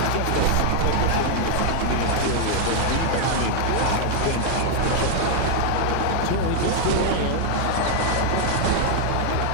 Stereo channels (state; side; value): different; both; correlation 0.00